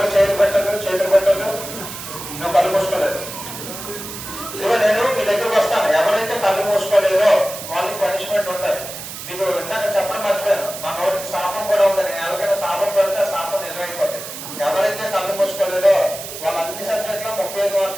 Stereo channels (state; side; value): noise; right; hiss, 10 dB below the sound